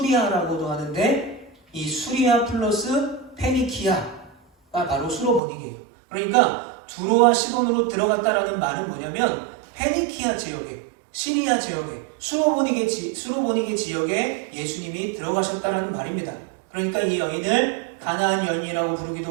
하는데 이 수리아 플러스 페니키아가 바로 수로보니게예요. 그러니까 두로와 시돈으로 들어갔다라는 말은 뭐냐면 페니키아 지역에, 시리아 지역에, 수로보니게 지역에 예수님이 들어가셨다라는 말입니다. 그러니까 이 여인을 가나안 여인이라고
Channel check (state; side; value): drops out; left; at 5.4 s